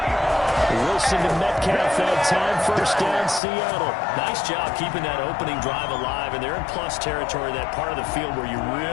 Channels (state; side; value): drops out; right; at 3.4 s